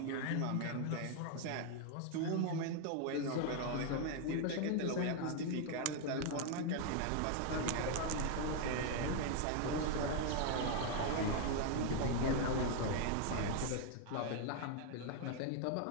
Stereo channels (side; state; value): both; different; correlation 0.00